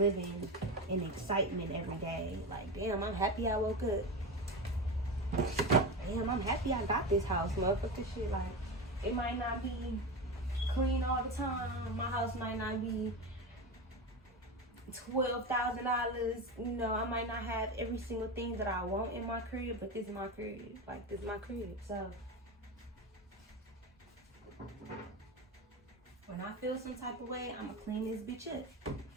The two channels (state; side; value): normal; both; correlation 0.21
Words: in excitement every day? Like, damn, I'm happy I woke up. damn, I'm happy I got this house, motherfucker. Shit, like, it might not be clean all the time. My house might not be $12,000. You know, I might not have every single thing that I want in my crib, but this is my crib. Like, this is my crib. So when I feel some type of way, I'ma clean this bitch up.